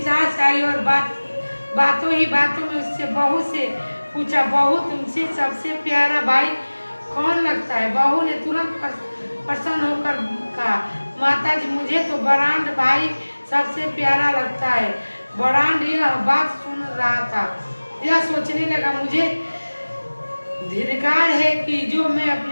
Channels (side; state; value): both; inverted; correlation -1.00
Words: सास आई और बातों में उससे बहू से पूछा, बहू तुमसे सबसे प्यारा भाई कौन लगता है? बहू ने तुरंत प्रसन्न होकर कहा, माताजी मुझे तो बरांड भाई सबसे प्यारा लगता है। बरांड यह बात सुन रहा था। यह सोचने लगा मुझे धिक्कार है कि जो मैं